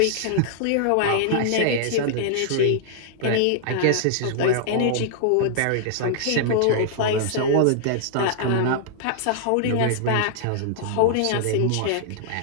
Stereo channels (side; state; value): both; different; correlation -0.01